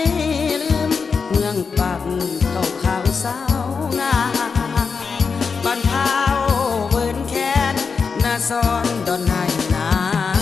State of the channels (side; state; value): right; quieter; 5.3 dB